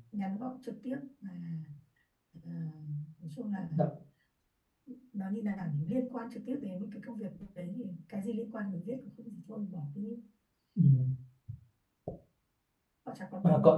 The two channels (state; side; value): identical; both; correlation 1.00